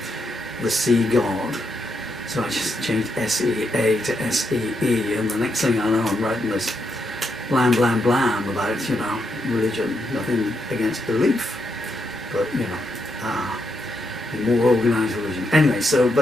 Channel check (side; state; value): both; normal; correlation 0.80